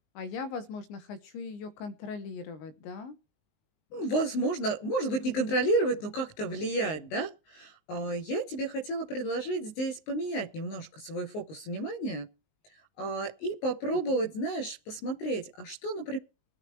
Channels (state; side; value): late; right; 19 ms